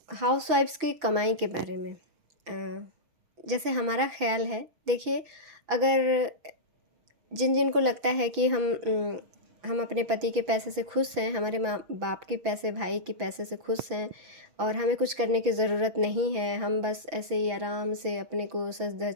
हाउसवाइफ्स की कमाई के बारे में। जैसे हमारा ख्याल है, देखिए, अगर जिन जिन को लगता है कि हम अपने पति के पैसे से खुश हैं, हमारे माँ बाप के पैसे, भाई के पैसे से खुश हैं और हमें कुछ करने की ज़रूरत नहीं है, हम बस ऐसे ही आराम से अपने को सज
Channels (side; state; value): left; late; 6.0 ms